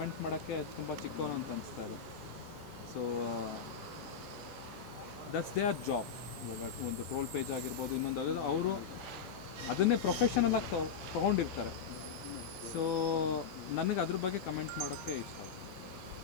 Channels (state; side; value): quieter; right; 6.6 dB